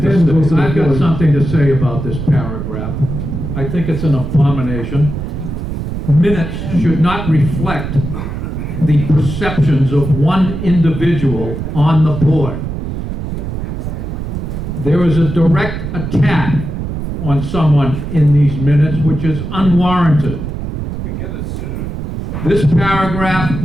then goes to say. the I've got board. something to say about this paragraph. I think it's an abomination. Minutes should not reflect the perceptions of one individual on the board. There is a direct attack on someone in these minutes, which is unwarranted. This paragraph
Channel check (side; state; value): right; noise; rumble, 5 dB below the sound